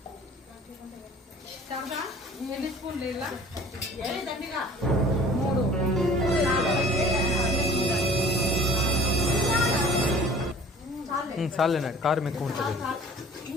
ఎన్ని స్పూన్లు ఇలా 3 చాలేనా? కారం ఎక్కువ ఉంటుంది.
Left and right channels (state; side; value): normal; both; correlation 0.48